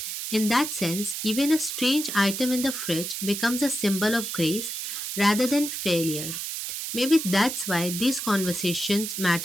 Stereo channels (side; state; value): right; noise; hiss, 5 dB below the sound